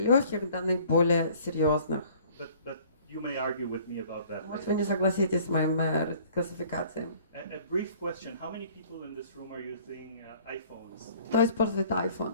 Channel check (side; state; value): both; inverted; correlation -0.53